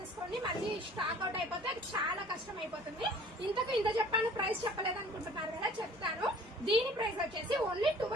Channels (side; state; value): both; normal; correlation 0.50